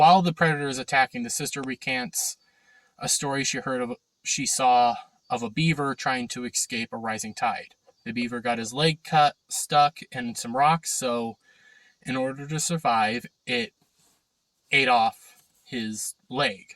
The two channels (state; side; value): identical; both; correlation 1.00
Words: the predator is attacking, the sister recants a story she saw of a beaver trying to escape a rising tide. The beaver got his leg stuck in some rocks, so in order to survive, it ate off his leg.